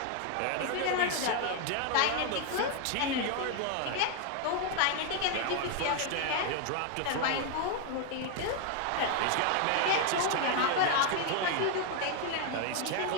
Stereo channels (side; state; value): both; different; correlation 0.00